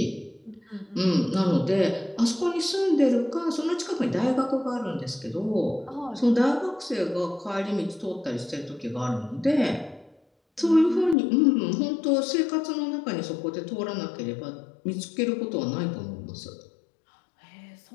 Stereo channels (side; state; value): right; drops out; at 11.2 s